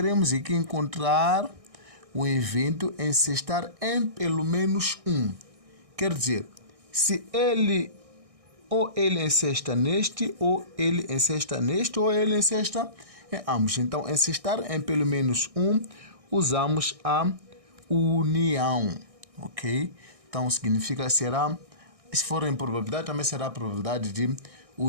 aqui encontrar o evento encestar em pelo menos um. Quer dizer, se ele ou ele encesta neste, ou ele encesta neste, ou ele encesta em ambos. Então, encestar em pelo menos um, usamos a união, ok? Então, significa será, se for em probabilidade, também será a probabilidade de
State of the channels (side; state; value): left; late; 1.6 ms